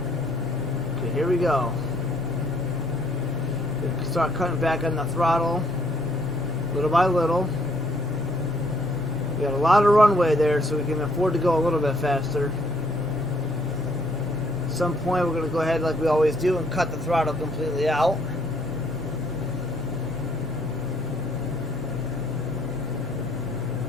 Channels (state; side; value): normal; both; correlation 0.66